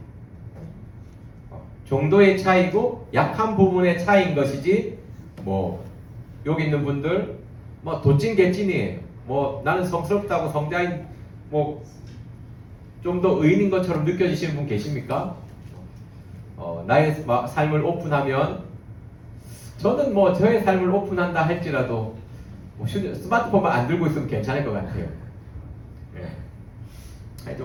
정도의 차이고 약한 부분의 차이인 것이지 뭐 여기 있는 분들 뭐 도찐 개찐이에요. 뭐 나는 성스럽다고 성자인 뭐 좀 더 의인인 것처럼 느껴지시는 분 계십니까? 나의 삶을 오픈하면 저는 뭐 저의 삶을 오픈한다 할지라도 뭐 스마트폰만 안 들고 있으면 괜찮을 것 같아요. 예.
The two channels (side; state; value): both; identical; correlation 1.00